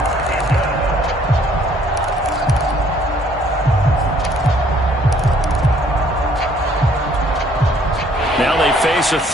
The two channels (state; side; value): normal; both; correlation 0.62